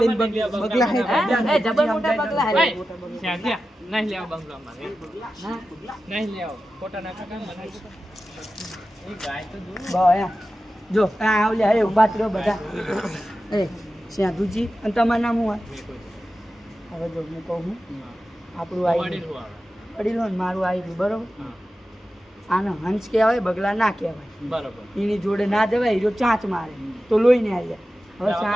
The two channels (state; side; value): normal; both; correlation 0.93